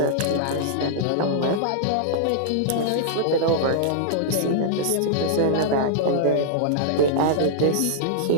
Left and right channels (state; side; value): different; both; correlation -0.01